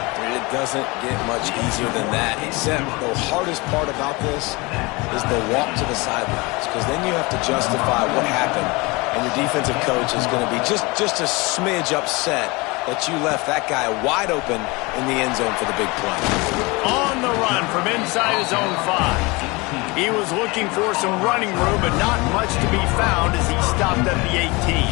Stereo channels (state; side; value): quieter; right; 25.2 dB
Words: It doesn't get much easier than that, except the hardest part about this is the walk to the sidelines, because then you have to justify what happened, and your defensive coach is going to be just a smidge upset that you left that guy wide open in the end zone for the big play. On the run from inside his own 5. He was looking for some running room, but not much to be found as he stopped at the 18.